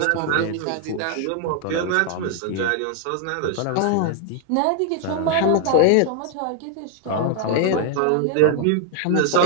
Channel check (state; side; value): different; both; correlation 0.00